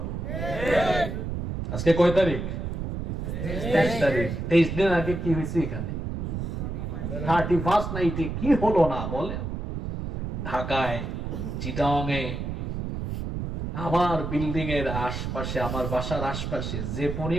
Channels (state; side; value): noise; right; rumble, 4 dB below the sound